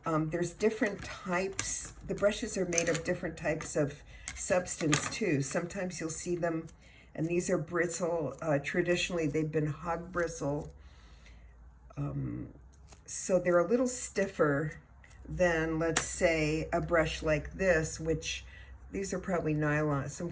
There's different types. The brushes are made of different types of substance too. Sometimes you'll see them, and these are bristle. Traditionally, they've been hog bristle. So they're a little stiffer than, let's say, a brush like this, which these are probably nylon, some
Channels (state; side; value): identical; both; correlation 1.00